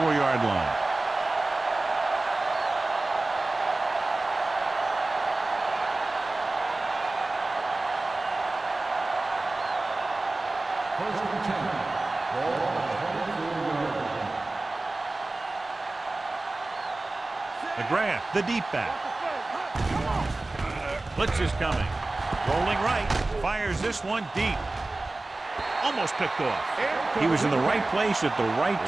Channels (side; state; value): left; quieter; 3.0 dB